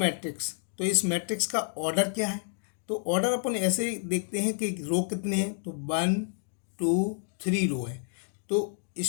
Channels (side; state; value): right; silent; 58 dB below the other